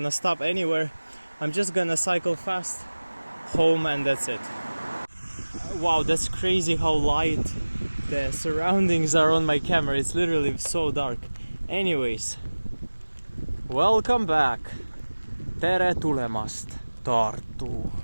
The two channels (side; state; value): both; inverted; correlation -1.00